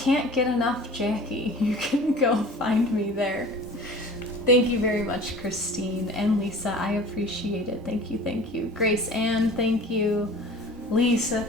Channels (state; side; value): normal; both; correlation 0.42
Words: get enough Jacqui, you can go find me there. Thank you very much, Christine and Lisa. I appreciate it. Thank you, thank you. Grace Ann, thank you. Lisa,